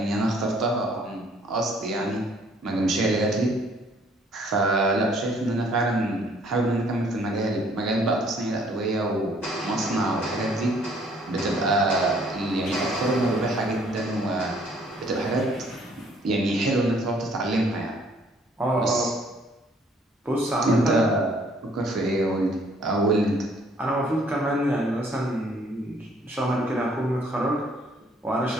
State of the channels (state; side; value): normal; both; correlation 0.62